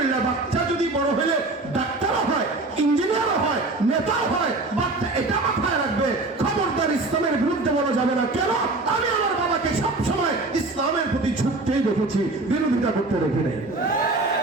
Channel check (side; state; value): left; quieter; 3.2 dB